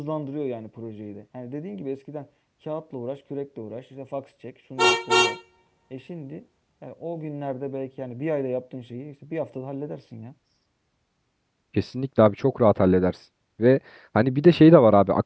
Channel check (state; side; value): identical; both; correlation 1.00